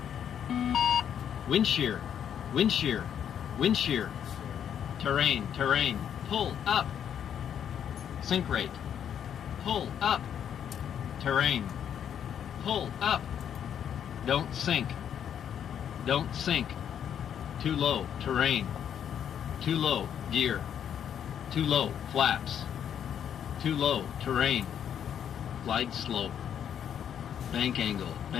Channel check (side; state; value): right; quieter; 9.0 dB